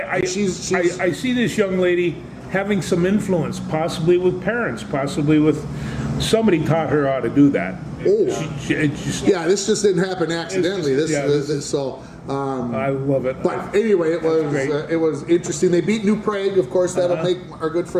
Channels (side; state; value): both; identical; correlation 1.00